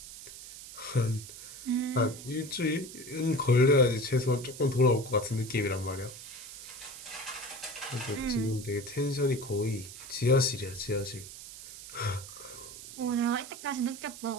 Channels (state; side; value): noise; right; hiss, 13 dB below the sound